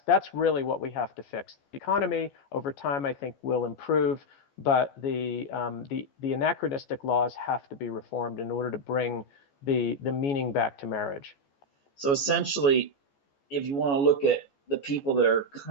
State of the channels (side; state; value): right; late; 14 ms